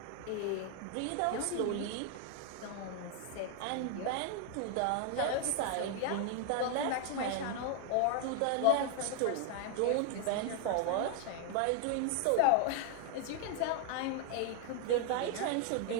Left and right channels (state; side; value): different; both; correlation 0.00